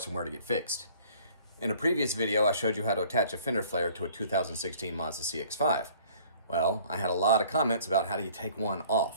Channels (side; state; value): both; inverted; correlation -0.54